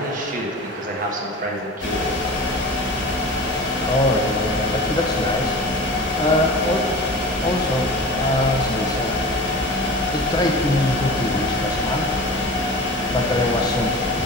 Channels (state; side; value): normal; both; correlation 0.34